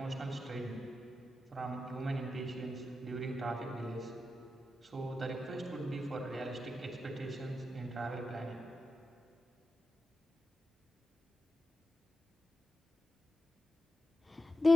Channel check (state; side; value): normal; both; correlation 0.90